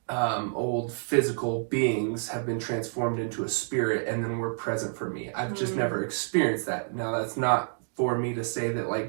old physical beings have been transformed into a spirit and then were present for me. I've just never experienced that. Now that's not for me to say that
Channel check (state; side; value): silent; left; digital silence